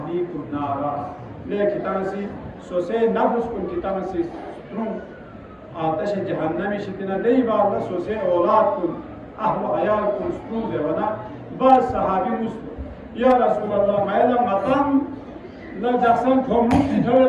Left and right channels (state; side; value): identical; both; correlation 1.00